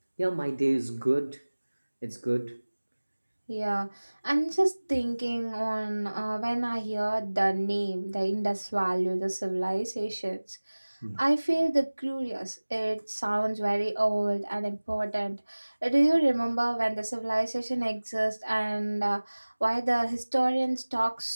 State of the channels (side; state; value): both; inverted; correlation -1.00